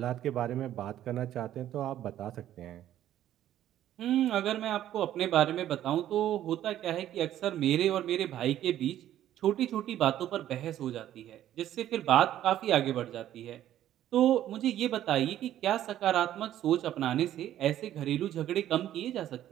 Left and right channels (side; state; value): left; quieter; 12.1 dB